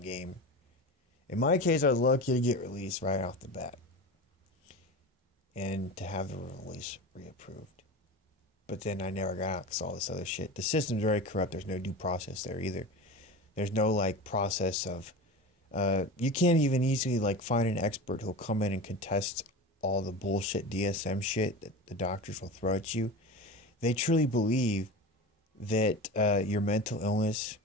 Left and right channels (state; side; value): normal; both; correlation 0.29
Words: game. In my case, I was lucky to get released right off the bat. And to have the release reapproved. But then I never got out because all this other shit. The system's very corrupt. There's no due process there either. There's no, process of... you can't even easily, find an expert who'll come in and contest all the bullshit DSM shit that the doctors will throw at you. They truly believe that your mental illness